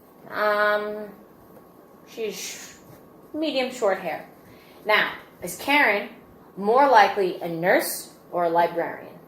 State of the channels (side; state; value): both; identical; correlation 1.00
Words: She's medium short hair. Now, is Karen more likely a nurse or a librarian?